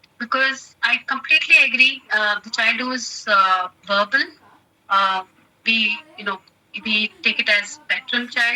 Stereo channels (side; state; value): both; identical; correlation 1.00